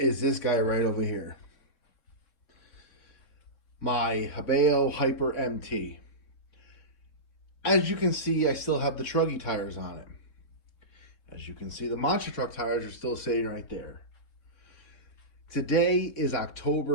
this guy right over here. My Hobao Hyper MT. As you can see, I still have the truggy tires on it. As you can see, the monster truck tires are still sitting right there. Today is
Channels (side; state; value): right; late; 3.7 ms